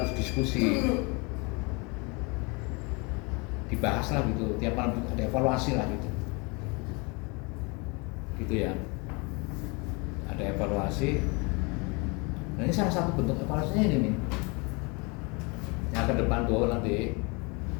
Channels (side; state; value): right; quieter; 29.5 dB